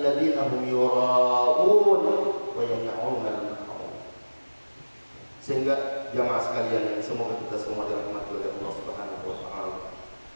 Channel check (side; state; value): both; inverted; correlation -1.00